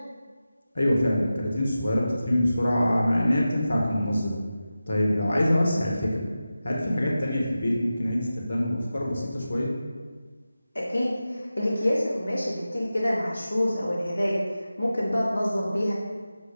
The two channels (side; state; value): both; inverted; correlation -0.93